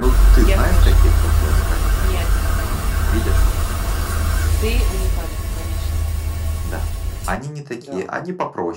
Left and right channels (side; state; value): both; identical; correlation 1.00